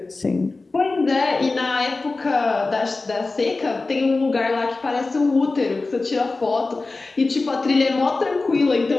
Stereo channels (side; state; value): right; quieter; 3.5 dB